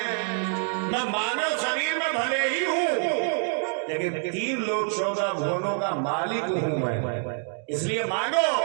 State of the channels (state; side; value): silent; left; 55 dB below the other